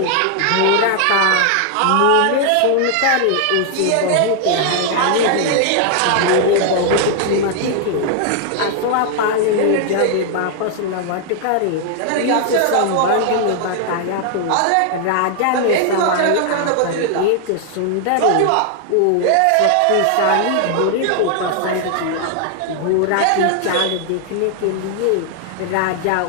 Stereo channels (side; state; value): both; different; correlation 0.00